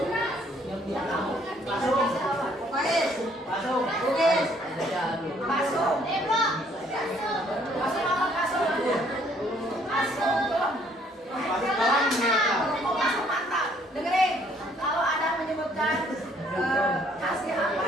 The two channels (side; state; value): both; normal; correlation 0.64